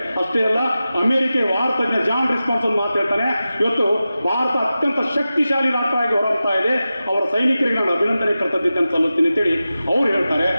ಅಷ್ಟೇ ಅಲ್ಲ, ಅಮೆರಿಕ ವಾರ್ತಜ್ಞ ಜಾನ್ ರಿಸ್ಪಾನ್ಸ್ ಒಂದು ಮಾತು ಹೇಳ್ತಾನೆ, ಇವತ್ತು ಭಾರತ ಅತ್ಯಂತ ಶಕ್ತಿಶಾಲಿ ರಾಷ್ಟ್ರವಾಗಿ ಹೊರಡ್ತಾ ಇದೆ, ಅವರ ಸೈನಿಕರಿಗೆ ನಾನು ಅಭಿನಂದನೆ ಕರ್ತವ್ಯತೆಯನ್ನು ಸಲ್ಲಿಸ್ತೀನಿ ಅಂತೇಳಿ ಅವ್ರು ಹೇಳ್ತಾರೆ.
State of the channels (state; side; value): inverted; both; correlation -0.94